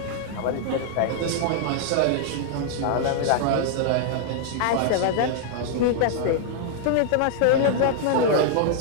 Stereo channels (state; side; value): different; both; correlation -0.01